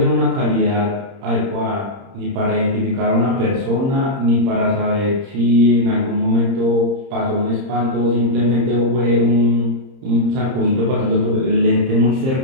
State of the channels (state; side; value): late; left; 30 ms